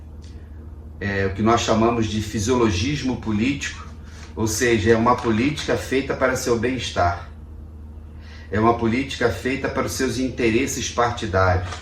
o que nós chamamos de fisiologismo político, ou seja, é uma política feita para seu bem-estar. É uma política feita para os seus interesses partidários.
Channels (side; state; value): both; identical; correlation 1.00